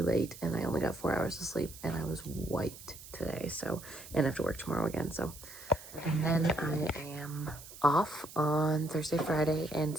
late and I only got 4 hours of sleep and I was wiped today. So, and I have to work tomorrow again. So, and then I am off on Thursday, Friday, and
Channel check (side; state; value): right; noise; hiss, 16 dB below the sound